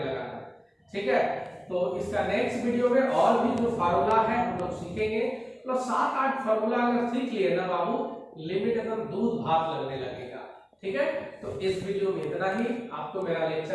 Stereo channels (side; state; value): both; identical; correlation 1.00